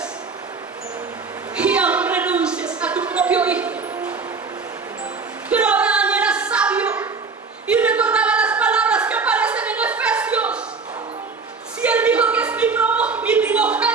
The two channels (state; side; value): quieter; left; 4.7 dB